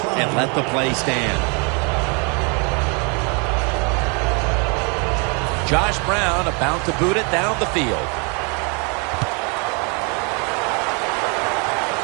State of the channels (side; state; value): left; quieter; 34.1 dB